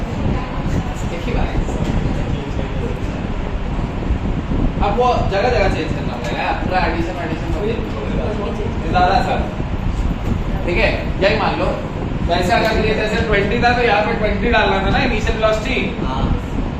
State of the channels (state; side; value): identical; both; correlation 1.00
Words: एक ही बात है। अब वो जगह जगह चेंज करना पड़ेगा, पूरा एडिशन ज़्यादा सर, ठीक है। यही मान लो वैसे अगर ये जैसे 20 था तो यहाँ पे 20 डालना था ना इनिशियल वेलोसिटी,